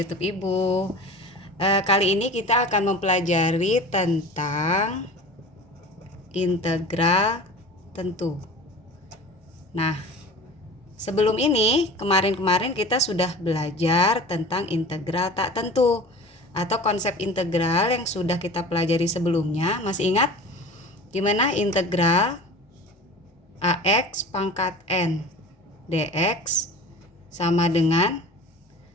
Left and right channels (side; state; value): both; normal; correlation 0.38